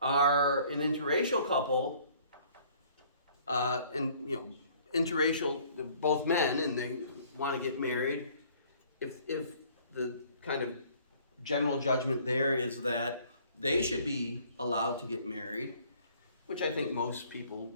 are an interracial couple, and interracial, both men, and they want to get married. If the kind of general judgment there is that they should be allowed to get married, which I think most people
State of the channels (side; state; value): both; inverted; correlation -0.57